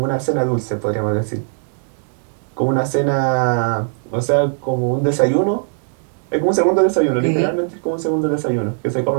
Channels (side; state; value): left; silent; digital silence